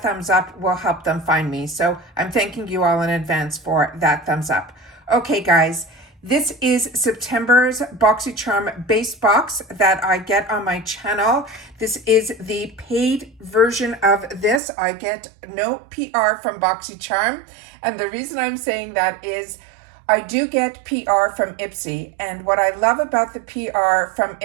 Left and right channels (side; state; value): left; drops out; at 14.6 s